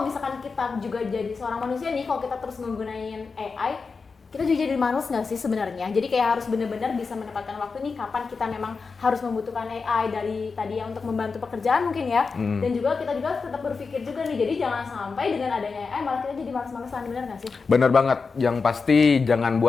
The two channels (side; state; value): right; quieter; 4.7 dB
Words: misalkan kita juga jadi seorang manusia nih, kalau kita terus menggunakan AI, kita juga jadi manusia nggak sih sebenarnya? Jadi kayak harus benar-benar bisa menempatkan waktu nih kapan kita memang harus membutuhkan AI dari tadi ya untuk membantu pekerjaan mungkin ya. Dan juga kita juga tetap berpikir juga nih, jadi jangan sampai dengan adanya AI malah kita jadi malas-malasan, benar nggak sih? Bener banget, yang pasti jangan